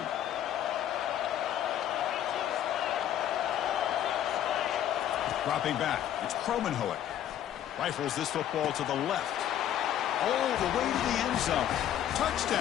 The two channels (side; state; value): right; quieter; 11.0 dB